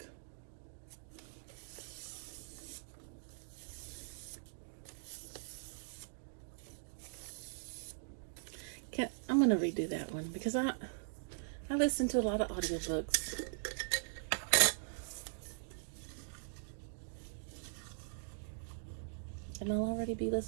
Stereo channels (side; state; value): left; silent; digital silence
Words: I'm going to redo that one because I listen to a lot of audiobooks. And I'll already be